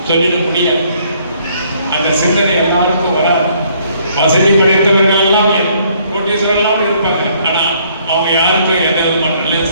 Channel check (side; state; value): both; inverted; correlation -0.64